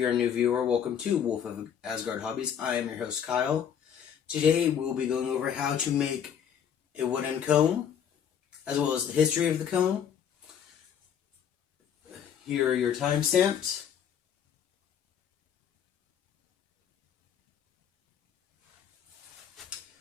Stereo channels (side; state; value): right; quieter; 8.5 dB